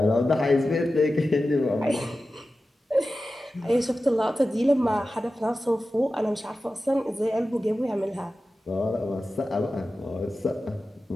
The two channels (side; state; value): both; normal; correlation 0.94